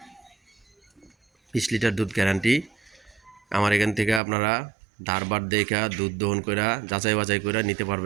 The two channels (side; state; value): left; drops out; at 4.2 s